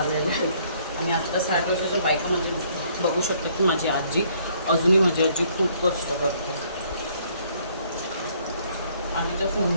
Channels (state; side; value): inverted; both; correlation -0.64